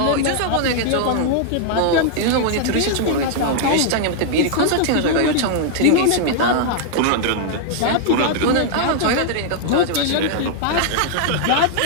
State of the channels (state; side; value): different; both; correlation 0.00